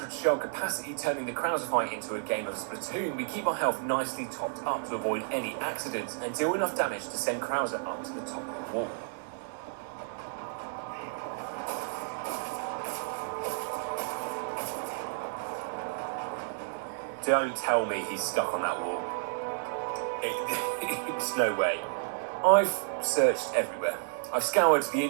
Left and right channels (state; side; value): silent; left; digital silence